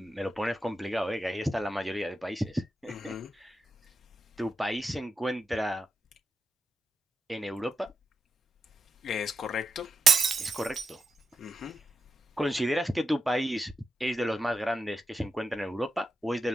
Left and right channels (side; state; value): both; normal; correlation 0.86